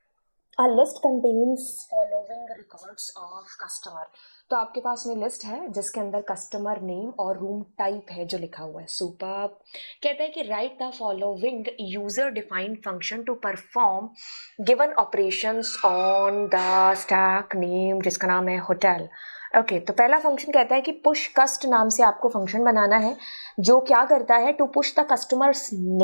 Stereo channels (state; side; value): inverted; both; correlation -1.00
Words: A list contains following records of customer। तो आपके पास में लिस्ट है जिसके अंदर कस्टमर नेम और रूम टाइप है जो लिखा हुआ है। सुपर कहता है कि write the following user defined function to perform given operations on the stack name जिसका नाम है होटल। ओके, तो पहला फंक्शन कहता है कि पुश कस्ट नाम से आपको फंक्शन बनाना है जो क्या करता है to push the customers